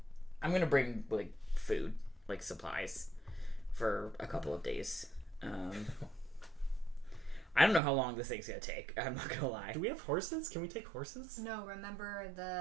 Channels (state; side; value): drops out; left; at 7.8 s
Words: I'm gonna bring like food, like supplies, for a couple of days. I don't know how long this thing's gonna take. I'm not gonna lie. Do we have horses? Can we take horses? No, remember